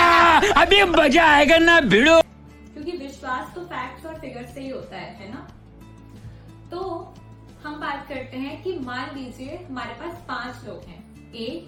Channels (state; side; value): identical; both; correlation 1.00